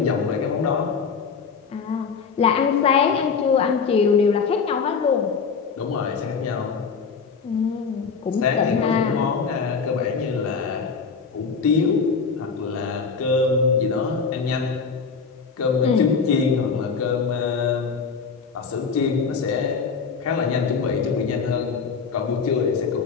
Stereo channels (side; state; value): right; quieter; 5.5 dB